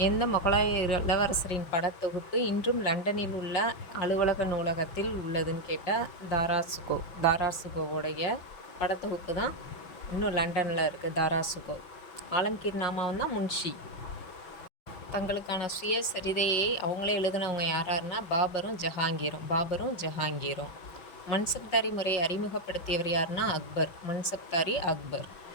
எந்த முகலாய இளவரசரின் படத்தொகுப்பு இன்றும் லண்டனில் உள்ள அலுவலக நூலகத்தில் உள்ளதுன்னு கேட்டால் தாராசுகோ. தாராசுகோவுடைய படத்தொகுப்பு தான் இன்னும் லண்டனில் இருக்குது. தாராசுகோ. ஆலம்கீர் நாமாவும் தான் முன்ஷி. தங்களுக்கான சுயசரிதையை அவங்களே எழுதினவங்க யாராருன்னா பாபரும் ஜஹாங்கீரும். மன்சப்தாரி முறையை அறிமுகப்படுத்தியவர் யாருன்னா அக்பர். மன்சப்தாரி அக்பர்.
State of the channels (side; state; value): right; late; 5.7 ms